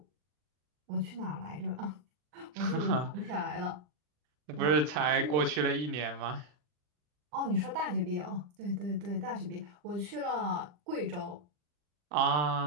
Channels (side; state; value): left; late; 40 ms